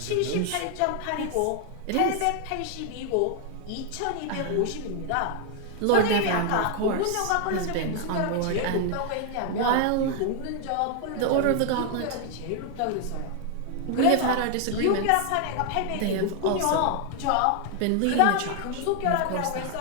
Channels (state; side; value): different; both; correlation 0.00